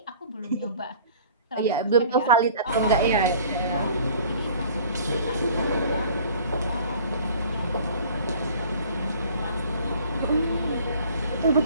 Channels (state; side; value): inverted; both; correlation -0.49